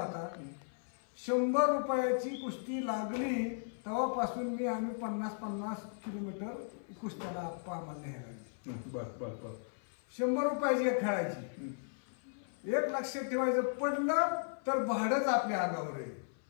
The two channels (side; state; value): right; silent; 54 dB below the other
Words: 100 रुपयाची कुस्ती लागली तेव्हापासून आम्ही 50-50 किलोमीटर कुस्त्याला आम्हाला न्यायला लागली. बर बर बर. 100 रुपयाची एक खेळायची. एक लक्षात ठेवायचं, पडलं तर भाडंच आपल्या अंगावर आहे.